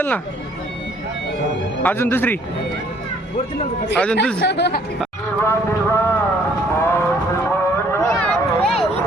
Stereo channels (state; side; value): normal; both; correlation 0.61